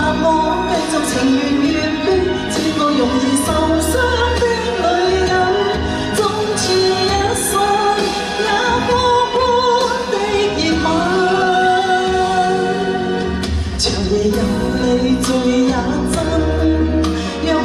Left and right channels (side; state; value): both; identical; correlation 1.00